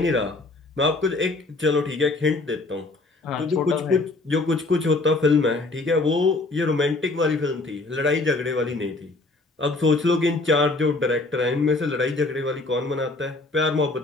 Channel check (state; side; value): quieter; right; 3.1 dB